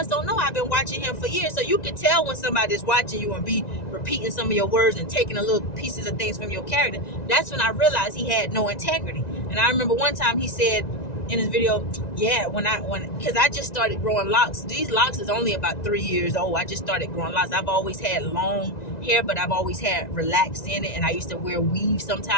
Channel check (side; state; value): right; late; 1.9 ms